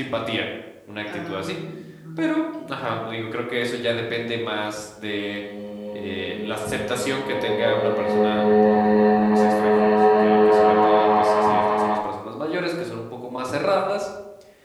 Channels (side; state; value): both; identical; correlation 1.00